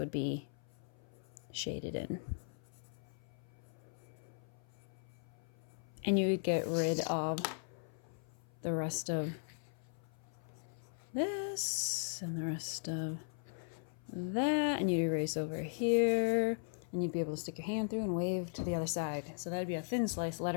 be shaded in. And you would get rid of the rest of this and the rest of that, and you'd erase over here, and you'd be able to stick your hand through and wave to the other side. So that'd be a thin slice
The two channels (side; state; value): right; silent; 52 dB below the other